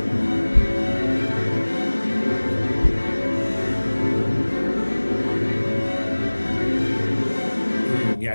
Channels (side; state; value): both; inverted; correlation -1.00